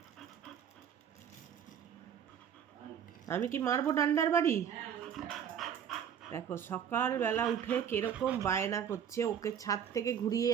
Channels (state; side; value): quieter; left; 8.6 dB